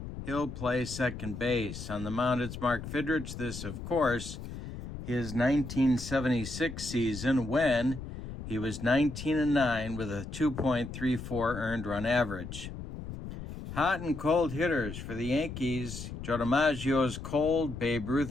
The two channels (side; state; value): left; noise; rumble, 9 dB below the sound